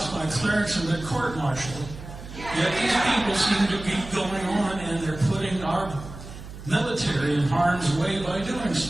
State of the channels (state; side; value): noise; right; hum, 13 dB below the sound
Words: my clearance and been court-martialed. Yet these people seem to be going on and they're putting our military in harm's way by doing